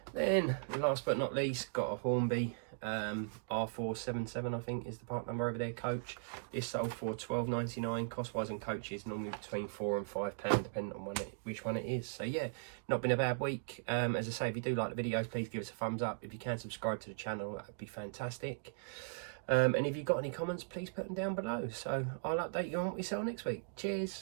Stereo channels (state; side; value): silent; left; digital silence